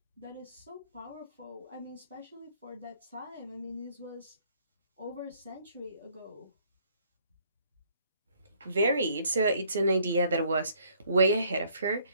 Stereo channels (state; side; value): inverted; both; correlation -0.63